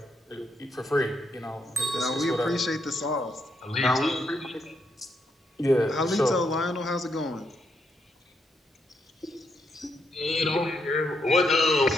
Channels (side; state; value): both; normal; correlation 0.78